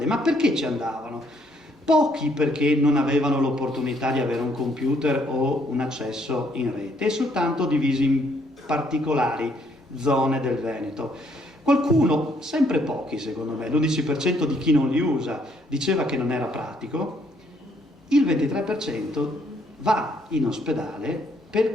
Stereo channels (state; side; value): normal; both; correlation 0.69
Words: ma perché ci andavano? Pochi perché non avevano l'opportunità di avere un computer o un accesso in rete, e soltanto divisi in particolari zone del Veneto. Qualcuno, sempre pochi secondo me, l'11% di chi non li usa diceva che non era pratico, il 23% va in ospedale